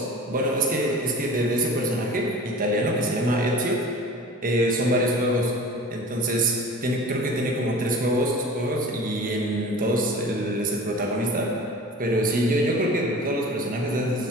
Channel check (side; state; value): both; normal; correlation 0.39